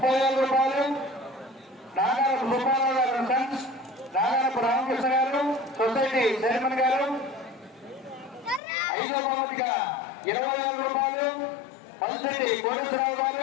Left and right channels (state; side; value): drops out; right; at 8.6 s